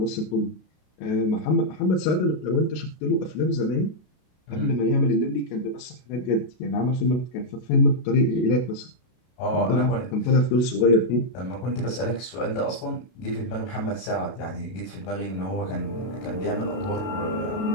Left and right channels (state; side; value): late; right; 32 ms